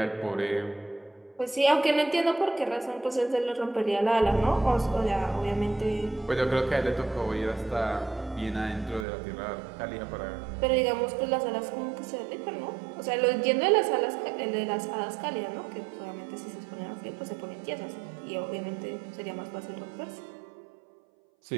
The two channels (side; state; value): left; drops out; at 9.1 s